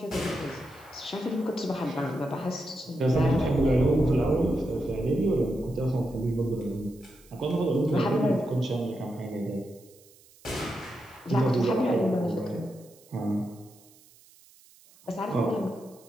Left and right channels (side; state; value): right; noise; hiss, 26 dB below the sound